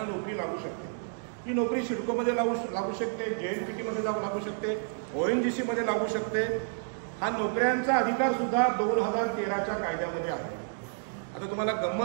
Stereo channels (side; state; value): left; silent; digital silence